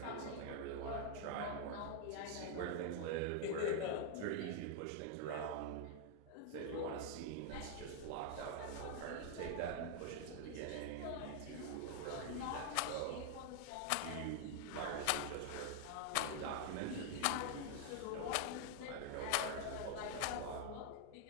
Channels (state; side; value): different; both; correlation 0.00